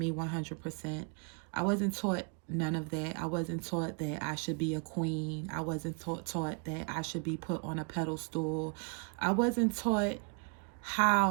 100%. I wasn't taught none of that. I wasn't taught that I should be a queen. I wasn't taught that I should be put on a pedestal. I wasn't taught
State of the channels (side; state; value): left; quieter; 37.9 dB